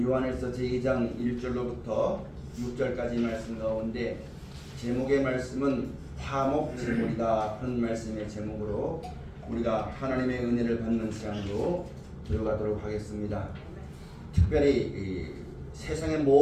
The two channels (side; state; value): both; identical; correlation 1.00